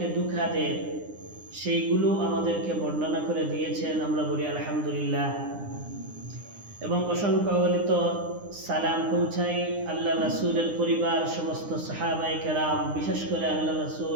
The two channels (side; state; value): left; late; 9.8 ms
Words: ধোঁকা দেয় সেইগুলো আমাদেরকে বর্ণনা করে দিয়েছেন। আমরা বলি আলহামদুলিল্লাহ। এবং অসংখ্য অগণিত সালাম পৌঁছাই আল্লাহ রাসূলের পরিবার, সমস্ত সাহাবায়ে কেরাম, বিশেষ করে আল্লাহ